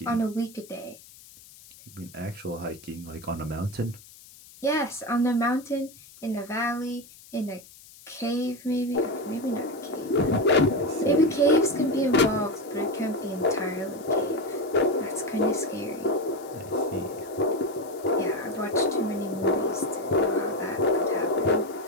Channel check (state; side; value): noise; left; hiss, 21 dB below the sound